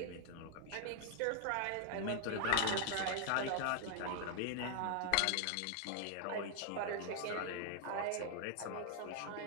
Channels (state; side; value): different; both; correlation 0.00